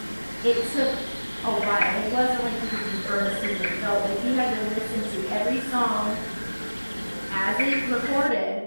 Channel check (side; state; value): both; inverted; correlation -1.00